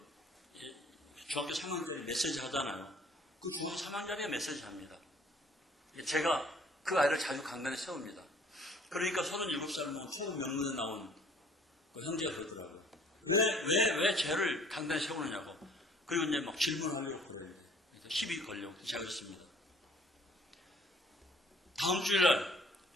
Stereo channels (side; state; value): both; normal; correlation 0.55